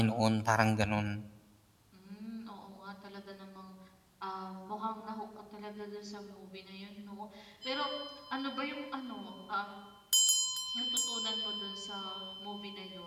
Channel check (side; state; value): both; identical; correlation 1.00